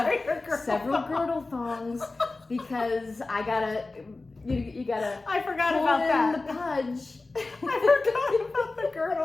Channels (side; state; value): right; quieter; 3.4 dB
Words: several girdle thongs because I gotta. You gotta. I forgot pull about in that. the pudge. I forgot about the